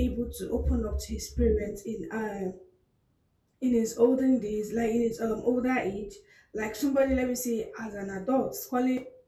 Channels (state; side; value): identical; both; correlation 1.00